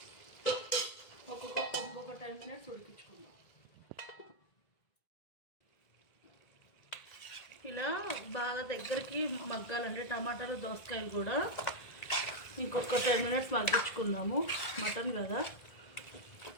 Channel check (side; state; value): right; late; 1.8 ms